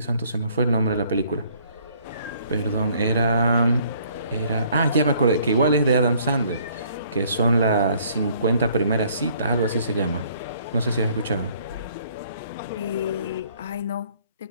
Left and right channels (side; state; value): both; inverted; correlation -0.61